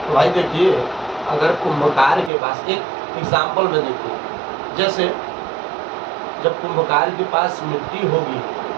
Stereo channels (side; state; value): left; drops out; at 2.3 s